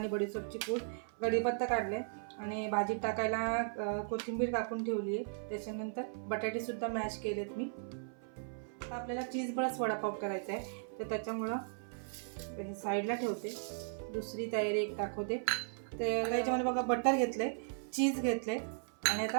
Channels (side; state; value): left; silent; 53 dB below the other